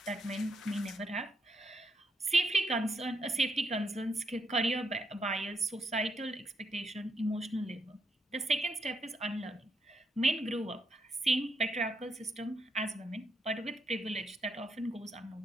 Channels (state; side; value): normal; both; correlation 0.79